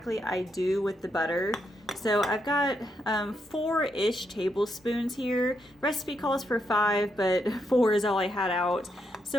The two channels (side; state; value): both; normal; correlation 0.80